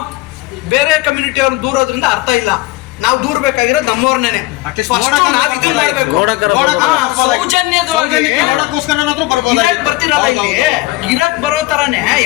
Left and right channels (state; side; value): quieter; right; 20.0 dB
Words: ಬೇರೆ ಕಮ್ಯುನಿಟಿ ಅವ್ರನ್ನ ದೂರೋದ್ರಿಂದ ಅರ್ಥ ಇಲ್ಲ. ನಾವು ದೂರ್ಬೇಕಾಗಿರೋದು ನಮ್ಮವ್ರನ್ನೇ. ಬರ್ತಿರಲ್ಲ ಇಲ್ಲಿ ಇರಕ್ ಬರೋ ತರಾನೇ